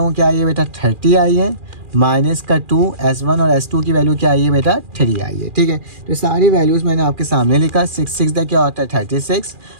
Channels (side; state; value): left; late; 2.4 ms